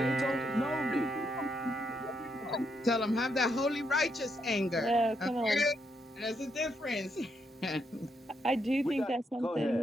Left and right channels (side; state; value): both; normal; correlation 0.78